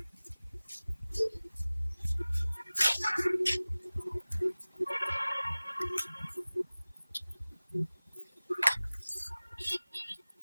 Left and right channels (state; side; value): inverted; both; correlation -0.99